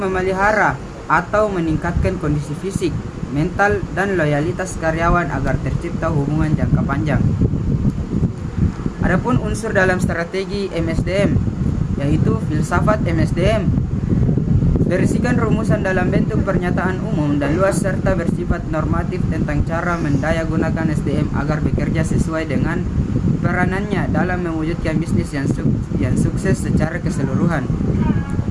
atau meningkatkan kondisi fisik, mental, dan loyalitas karyawan agar tercipta hubungan jangka panjang. Adapun unsur dalam strategi MSDM, yaitu filsafat MSDM, berisikan rumusan dalam bentuk pernyataan umum dan luas serta bersifat normatif tentang cara mendayagunakan SDM agar bekerja sesuai dengan peranannya dalam mewujudkan bisnis yang sukses secara keseluruhan.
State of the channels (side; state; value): both; identical; correlation 1.00